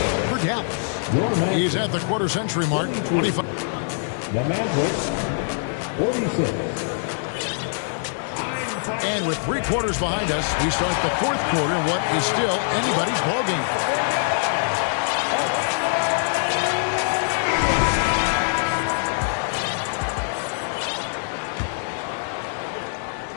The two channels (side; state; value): right; silent; digital silence